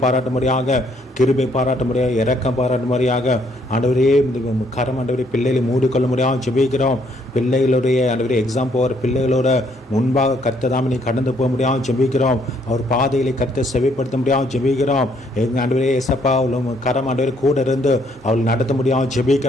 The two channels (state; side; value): normal; both; correlation 0.68